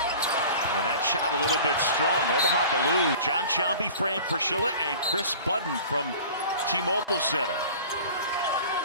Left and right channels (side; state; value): both; inverted; correlation -0.42